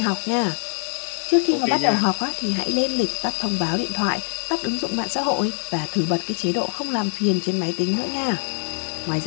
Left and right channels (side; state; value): right; silent; 57 dB below the other